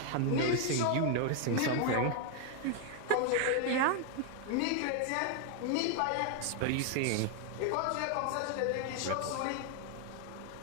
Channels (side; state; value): both; different; correlation 0.00